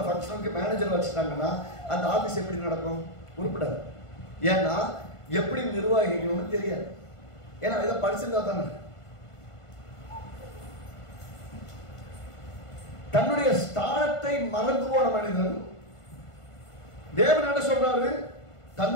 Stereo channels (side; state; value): right; late; 1.5 ms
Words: மேனேஜர் வச்சுட்டாங்கன்னா அந்த ஆபீஸ் எப்படி நடக்கும்? உருப்படாது. ஏன்னா எப்படி நிர்வாகிக்கணும்னு தெரியாது. ஏன்னா இதை படிச்சிருந்தா தானே. தன்னுடைய ஸ்தானத்தை மறந்து போன மனிதன் தேவன் என்ன சொல்றாரு?